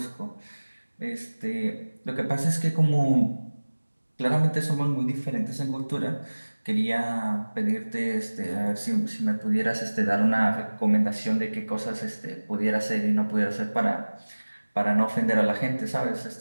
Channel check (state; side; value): inverted; both; correlation -1.00